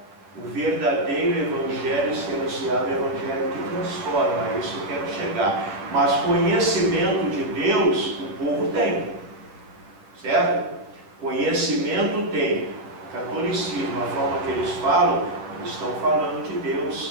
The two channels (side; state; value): left; late; 10 ms